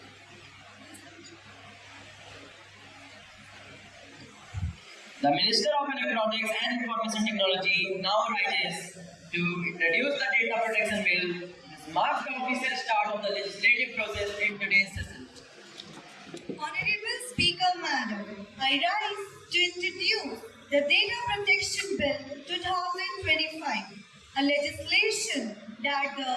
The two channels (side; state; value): both; identical; correlation 1.00